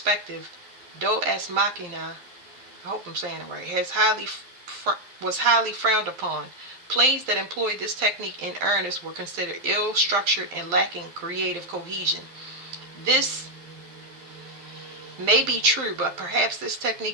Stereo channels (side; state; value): left; late; 11 ms